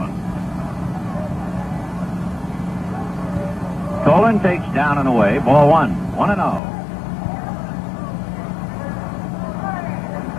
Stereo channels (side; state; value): right; drops out; at 6.6 s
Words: Tolan takes down and away, ball 1, 1-0.